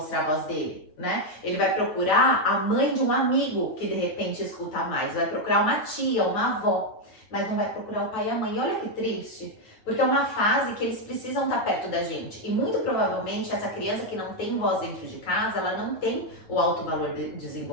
a voz dele, né? Ele vai procurar a mãe de um amigo que de repente escuta mais, vai procurar uma tia, uma avó, mas não vai procurar o pai e a mãe. E olha que triste, porque é uma fase que eles precisam estar perto da gente. E muito provavelmente essa criança que não tem voz dentro de casa, ela não tem o alto valor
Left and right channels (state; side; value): late; right; 9.2 ms